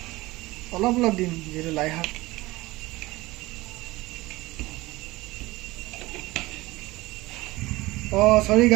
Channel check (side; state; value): left; quieter; 20.0 dB